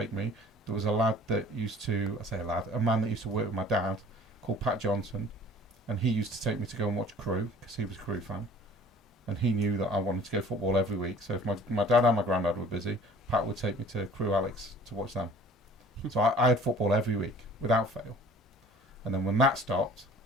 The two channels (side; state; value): both; normal; correlation 0.48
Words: me, there was a lad that used to, I say a lad, a man that used to work with my dad called Pat Johnson, and he used to take me to go and watch Crew because he was a Crew fan, and he knew that I wanted to go football every week. So if my dad and my granddad were busy, Pat would take me to Crew Alex to watch them. So I had football every week without fail. And then when that stopped,